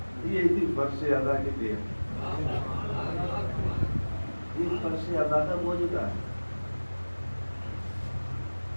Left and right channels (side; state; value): both; inverted; correlation -1.00